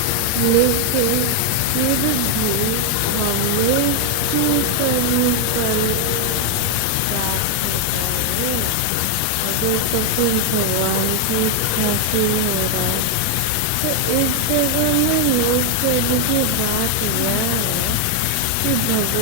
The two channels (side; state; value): both; different; correlation 0.00